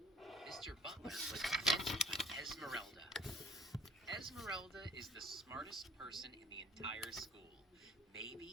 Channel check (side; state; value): both; normal; correlation 0.56